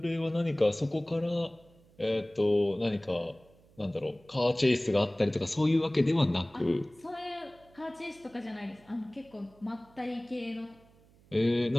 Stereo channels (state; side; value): noise; right; hum, 28 dB below the sound